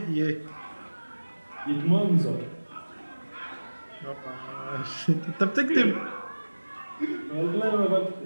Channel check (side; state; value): both; inverted; correlation -1.00